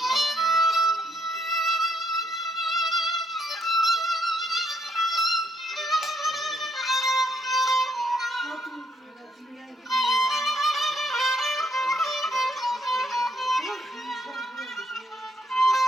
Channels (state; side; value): normal; both; correlation 0.72